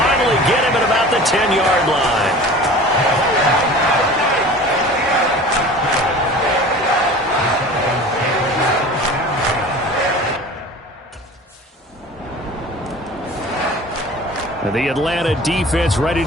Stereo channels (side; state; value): both; normal; correlation 0.40